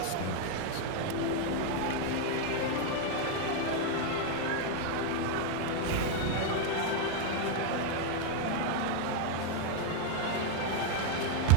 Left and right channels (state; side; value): different; both; correlation 0.01